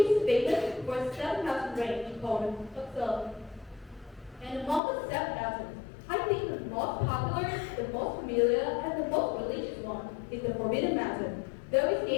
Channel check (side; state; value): right; drops out; at 4.8 s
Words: famous for its 7,000 range called Bắc. And among the 7,000, I think the most popular, the most familiar, and the most religious one is the Forbidden Mountain. Though its